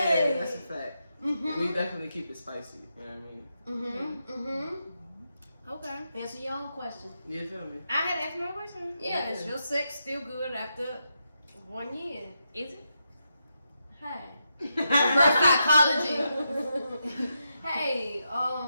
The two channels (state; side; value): inverted; both; correlation -0.84